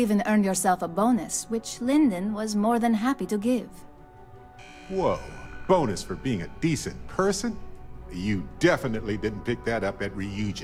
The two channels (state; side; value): identical; both; correlation 1.00